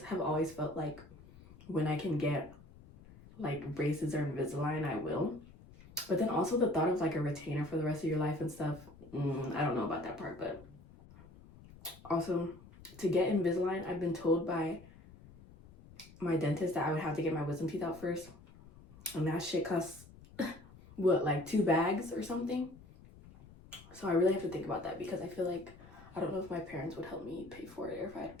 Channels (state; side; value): noise; left; rumble, 21 dB below the sound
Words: have always felt like when I can get like braces or Invisalign, I will. But then also the thought of like a retainer for the rest of your life and stuff, I don't know about that part. But also, to get Invisalign, I've been told by my dentist that I would have to get my wisdom teeth out first, and that shit costs what, like 2 bags or something. So I really have to think about that, because I feel like I don't know if my parents would help me pay for it, or if I had